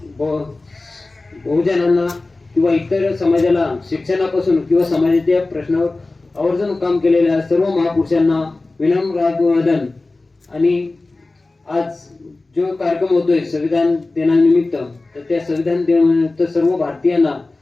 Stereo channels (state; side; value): quieter; right; 3.2 dB